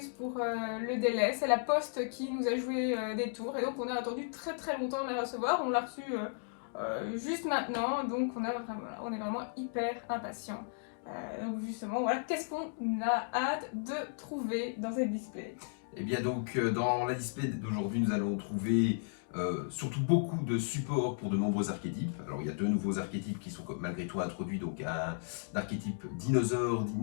pour le délai. C'est la poste qui nous a joué des tours et donc on a attendu très longtemps de la recevoir. On l'a reçue juste maintenant, donc on est vraiment hyper impatients. Donc justement, voilà, qu'est-ce qu'on a hâte de trouver dans cette display? Et bien donc dans la display d'aujourd'hui nous allons trouver surtout beaucoup de supports pour de nombreux archétypes. Alors il y a deux nouveaux archétypes qui sont malgré tout introduits, donc un archétype dinosaure,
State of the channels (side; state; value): right; silent; digital silence